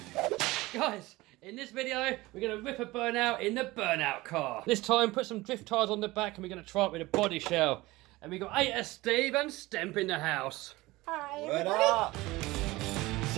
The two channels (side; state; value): left; quieter; 19.9 dB